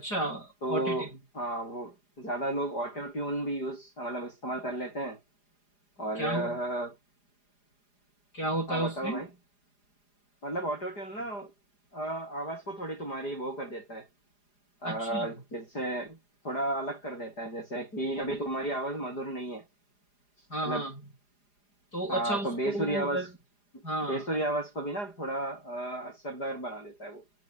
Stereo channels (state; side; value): late; right; 4.9 ms